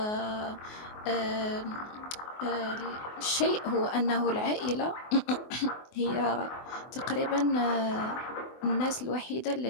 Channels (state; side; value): late; right; 24 ms